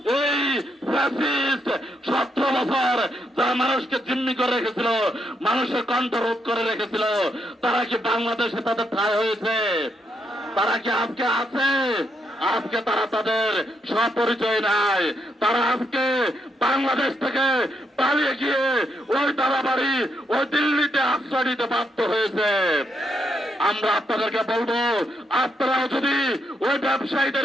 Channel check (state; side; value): normal; both; correlation 0.78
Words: এই ফ্যাসিস্ট 17 বছর যারা মানুষকে জিম্মি করে রেখেছিল, মানুষের কণ্ঠ রোধ করে রেখেছিল, তারা কি বাংলাদেশে তাদের ঠাঁই হয়েছে? তারা কি আজকে আছে? আজকে তারা তাদের স্বপরিচয় নাই। তারা আজকে বাংলাদেশ থেকে পালিয়ে গিয়ে ওই দাদাবাড়ি, ওই দিল্লিতে আশ্রয় নিতে বাধ্য হয়েছে। আমরা আপনাদেরকে বলবো, আপনারাও যদি ওই